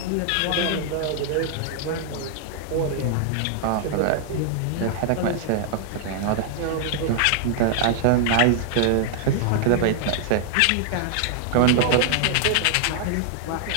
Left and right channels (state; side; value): different; both; correlation 0.00